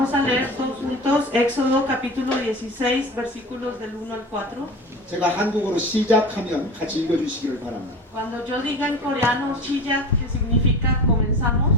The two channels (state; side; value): normal; both; correlation 0.34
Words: a leer todos juntos Éxodo capítulo 16, versículos del 1 al 4. 제가 한국어로 시작하면 같이 읽어주시기를 바랍니다. Cuando yo diga en coreano 시작, que significa comenzamos,